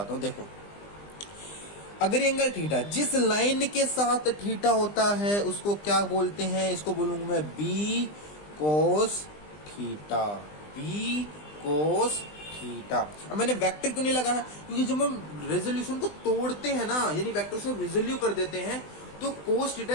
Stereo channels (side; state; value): right; late; 20 ms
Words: हूँ। देखो, अगर एंगल थीटा, जिस लाइन के साथ थीटा होता है उसको क्या बोलते हैं? इसको बोलूंगा मैं B cos theta, B cos theta. अब मैंने वेक्टर क्यों नहीं लगा है? क्योंकि जब हम रेजोल्यूशन को तोड़ते हैं ना, यानी वेक्टर से रिजोल्यू कर देते हैं, तो कोस